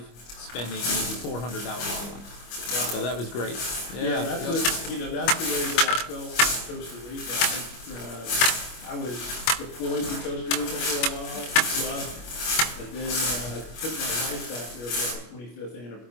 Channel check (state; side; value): late; right; 25 ms